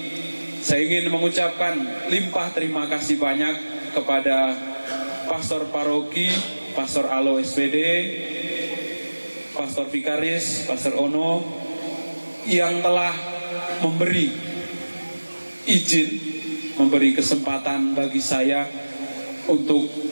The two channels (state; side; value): inverted; both; correlation -1.00